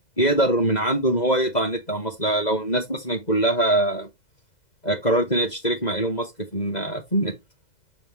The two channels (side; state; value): right; late; 2.0 ms